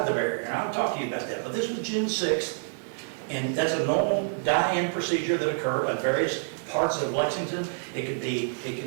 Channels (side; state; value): left; silent; digital silence